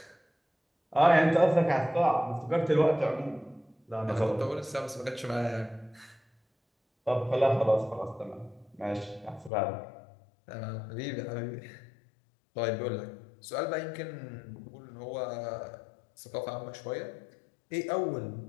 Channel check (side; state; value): right; drops out; at 9.5 s